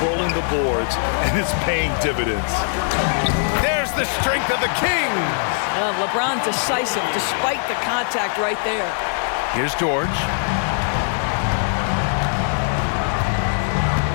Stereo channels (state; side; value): silent; right; digital silence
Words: the boards, and it's paying dividends. There's the strength of the Kings. LeBron decisive despite the contact right there. Here's George.